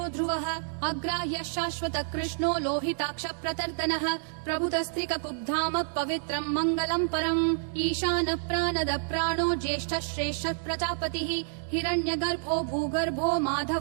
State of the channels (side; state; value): left; silent; digital silence